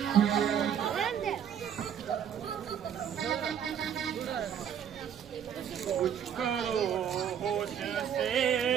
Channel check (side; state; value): left; quieter; 8.6 dB